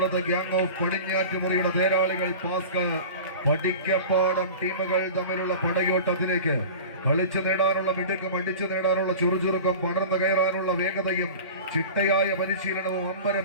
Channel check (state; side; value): inverted; both; correlation -0.35